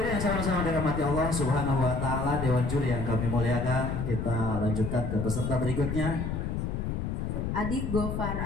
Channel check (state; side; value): noise; left; rumble, 2 dB below the sound